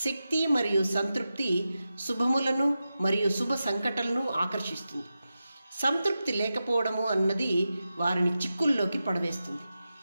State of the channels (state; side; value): inverted; both; correlation -0.91